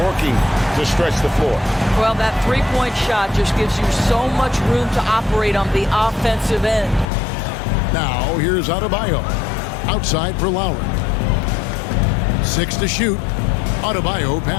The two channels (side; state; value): right; drops out; at 7.1 s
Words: to stretch the floor. Well, that three-point shot just gives you so much room to operate on the offensive end. Now, here's Adebayo. Outside for Lowry. 6 to shoot. Adebayo